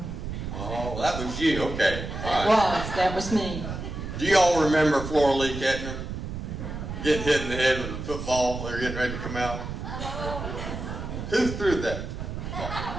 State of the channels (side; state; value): right; noise; rumble, 6 dB below the sound